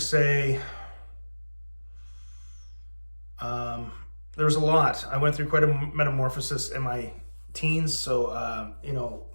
say there was a lot. I went through quite a metamorphosis in my teens. So, I'm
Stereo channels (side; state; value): both; inverted; correlation -1.00